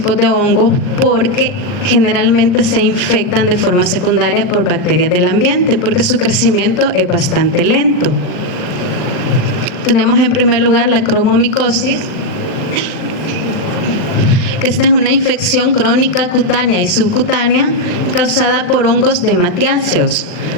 de hongos porque generalmente se infectan de forma secundaria por bacterias del ambiente porque su crecimiento es bastante lento. Tenemos en primer lugar la cromomicosis, que esta es una infección crónica cutánea y subcutánea causada por hongos dematiáceos.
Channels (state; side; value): late; right; 39 ms